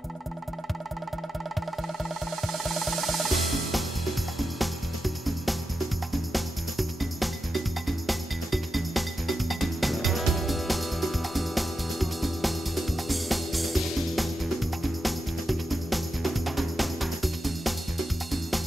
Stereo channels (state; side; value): normal; both; correlation 0.89